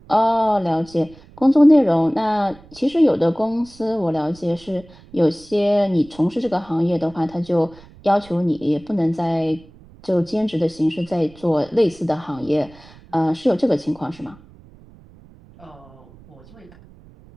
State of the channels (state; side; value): noise; right; rumble, 24 dB below the sound